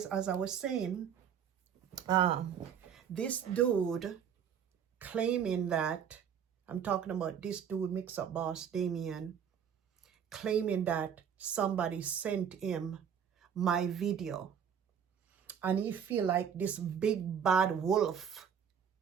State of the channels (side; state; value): left; quieter; 8.0 dB